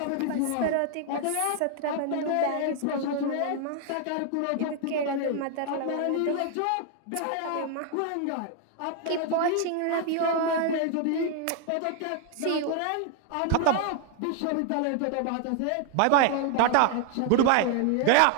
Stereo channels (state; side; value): different; both; correlation 0.00